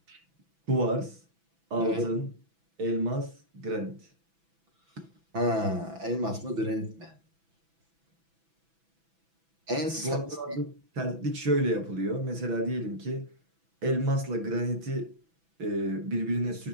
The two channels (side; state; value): left; late; 6.0 ms